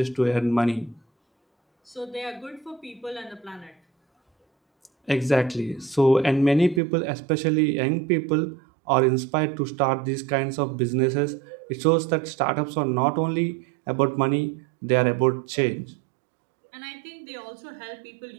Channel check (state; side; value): drops out; left; at 6.8 s